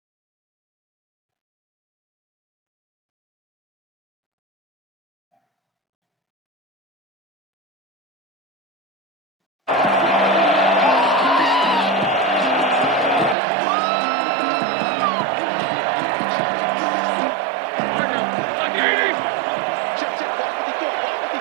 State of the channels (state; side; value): drops out; left; at 13.4 s